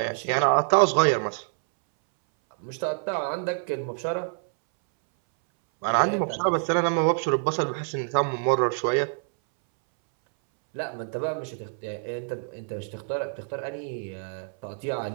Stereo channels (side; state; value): left; silent; 61 dB below the other